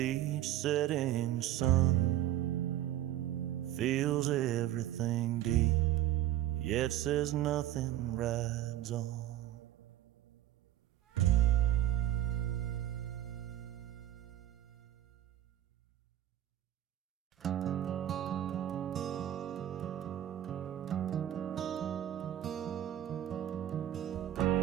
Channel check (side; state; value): left; quieter; 12.7 dB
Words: setting sun, feels everything deep, yet says nothing, rides on.